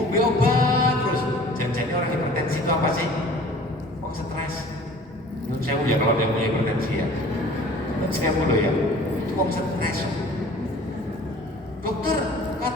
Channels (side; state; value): both; normal; correlation 0.47